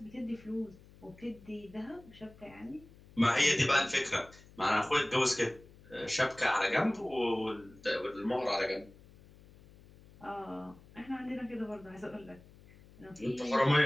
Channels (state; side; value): noise; left; hum, 23 dB below the sound